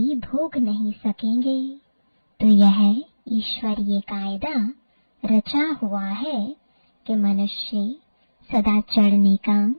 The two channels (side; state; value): both; inverted; correlation -1.00